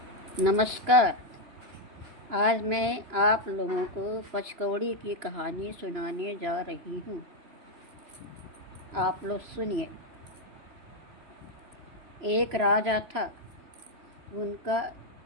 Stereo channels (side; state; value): left; late; 3.0 ms